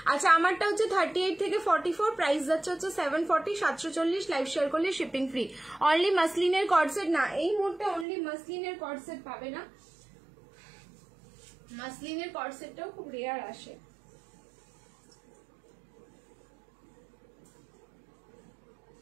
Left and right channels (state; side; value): drops out; left; at 8.1 s